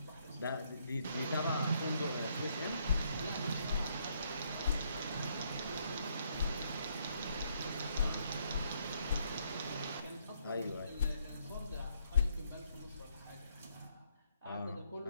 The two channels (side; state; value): both; inverted; correlation -0.71